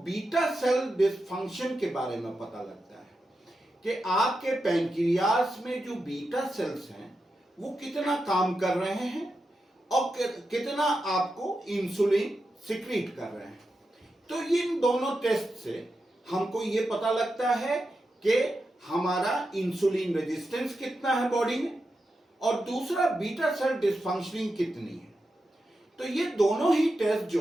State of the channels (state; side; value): normal; both; correlation 0.89